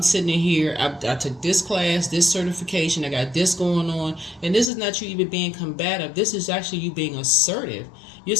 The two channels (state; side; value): drops out; right; at 4.7 s